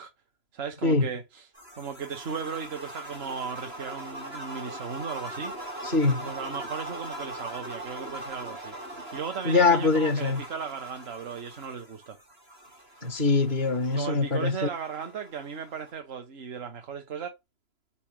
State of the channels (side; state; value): left; late; 3.0 ms